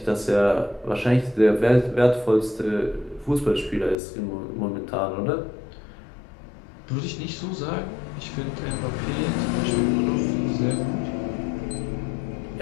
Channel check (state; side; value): drops out; right; at 4.0 s